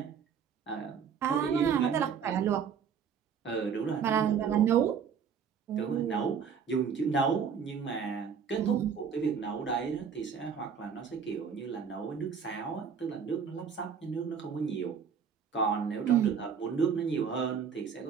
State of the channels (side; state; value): left; quieter; 6.9 dB